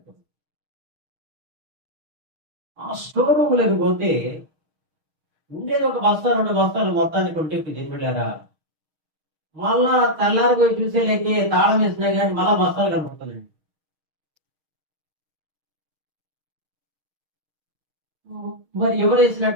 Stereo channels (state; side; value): late; left; 6.4 ms